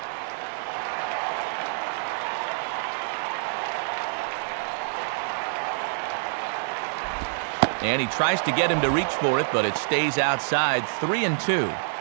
And he tries to get him to reach for it, but it stays outside. 3-2.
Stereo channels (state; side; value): silent; left; 56 dB below the other